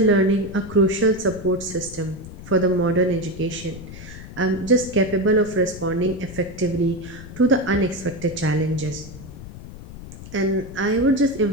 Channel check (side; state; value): left; noise; rumble, 14 dB below the sound